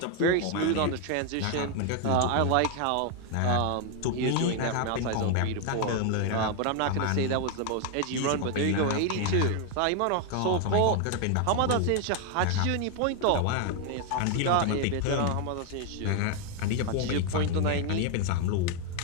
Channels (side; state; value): both; different; correlation 0.01